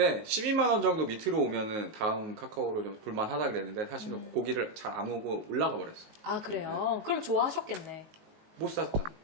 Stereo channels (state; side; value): late; left; 19 ms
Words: 12만 원 정도 밑으로 오면은 다음 카카오로 좀 볼만하다 그랬는데 사실은 고기를 잘 안 오고 올라가 버렸어. 아 그래요? 그럼 좋아하셨겠네. 못 샀잖아.